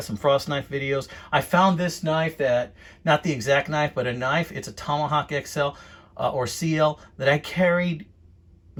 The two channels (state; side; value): identical; both; correlation 1.00